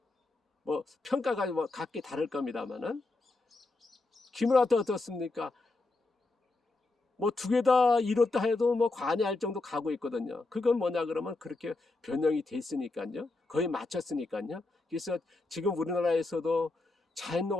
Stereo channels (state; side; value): quieter; right; 3.3 dB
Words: 뭐 평가가 뭐 각기 다를 겁니다만은 기무라도 어떻습니까? 뭐 두 개 다 이뤘다 해도 뭐 관여할 정도 가고 있거든요. 그건 뭐냐 그러면 그렇게 변형이 됐으니까요. 거의 맞췄으니까요. 그래서 지금 우리나라에서도